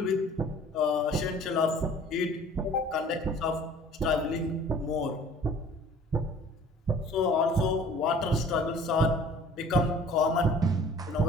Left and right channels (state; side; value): normal; both; correlation 0.49